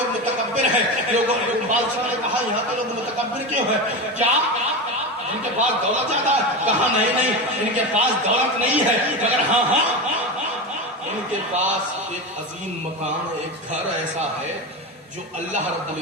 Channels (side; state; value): both; normal; correlation 0.21